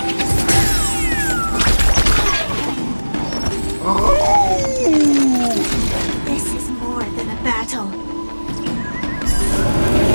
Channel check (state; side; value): inverted; both; correlation -1.00